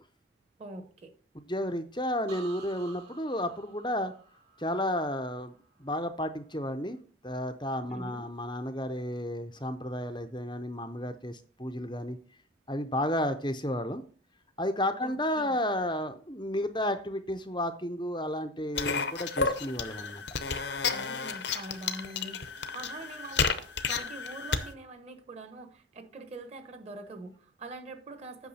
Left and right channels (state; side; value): normal; both; correlation 0.32